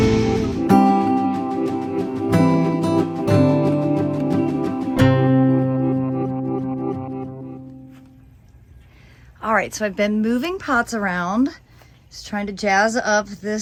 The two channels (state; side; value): identical; both; correlation 1.00